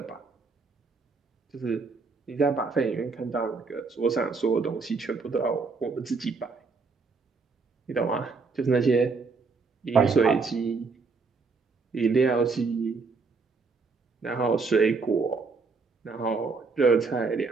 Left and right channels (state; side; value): quieter; left; 4.4 dB